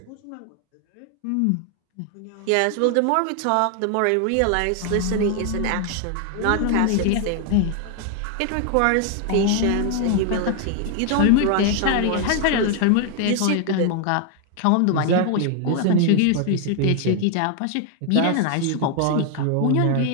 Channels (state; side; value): different; both; correlation 0.00